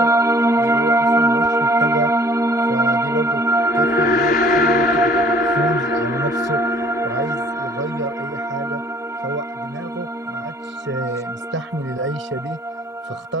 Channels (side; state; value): both; normal; correlation 0.55